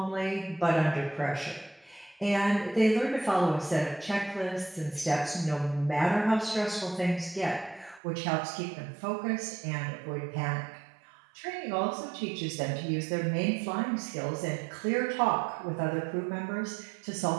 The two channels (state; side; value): drops out; left; at 8.0 s